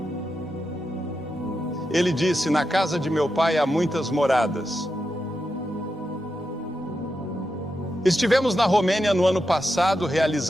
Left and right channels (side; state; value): both; normal; correlation 0.87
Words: Ele disse: na casa de meu pai há muitas moradas. Estivemos na Romênia no ano passado